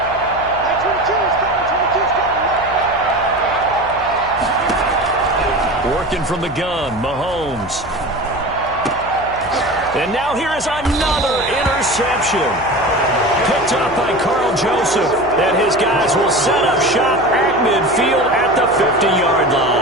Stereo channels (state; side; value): noise; left; hum, 16 dB below the sound